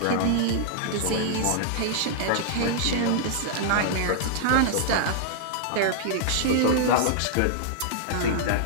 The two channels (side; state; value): both; different; correlation -0.01